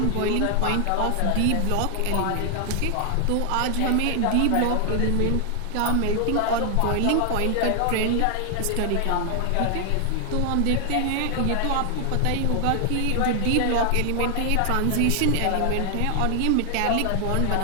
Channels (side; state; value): both; different; correlation 0.00